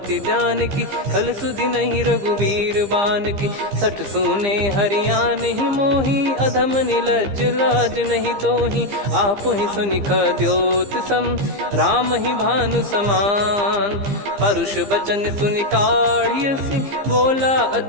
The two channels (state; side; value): late; left; 15 ms